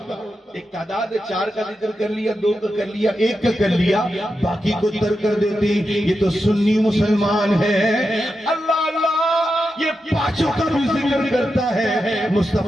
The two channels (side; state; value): both; normal; correlation 0.88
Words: ایک تعداد 4 کا ذکر کر لیا، 2 کا کر لیا، 1 کا کر لیا، باقی کو ترک کر دیتے، یہ تو سنی مسلمان ہے۔ اللہ اللہ یہ 5 کا بھی ذکر کرتا ہے،